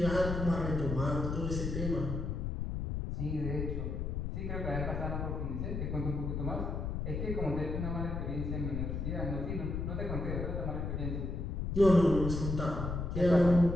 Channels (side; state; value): left; noise; rumble, 2 dB below the sound